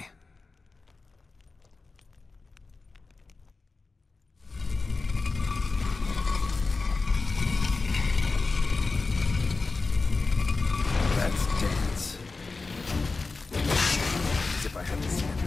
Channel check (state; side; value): quieter; right; 3.9 dB